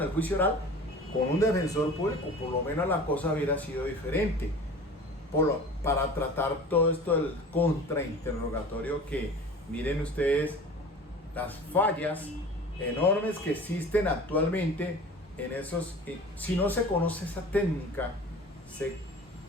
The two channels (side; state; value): both; normal; correlation 0.40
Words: el juicio oral con un defensor público, por lo menos la cosa hubiera sido diferente. Para tratar todo esto del contrainterrogatorio, que miren ustedes las fallas enormes que existen actualmente en esos. Si no se conoce esa técnica,